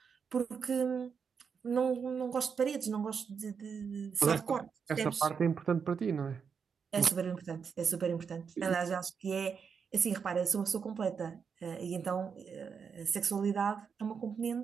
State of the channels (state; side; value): quieter; left; 6.3 dB